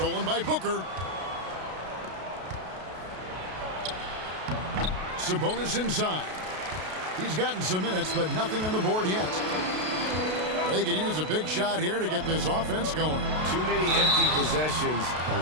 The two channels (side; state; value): left; late; 32 ms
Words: by Booker. Sabonis inside. He's gotten some minutes, but nothing on the board yet. They could use a big shot here to get this offense going. Too many empty possessions.